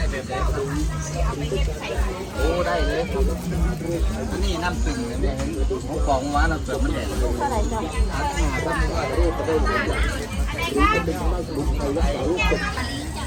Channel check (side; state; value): both; identical; correlation 1.00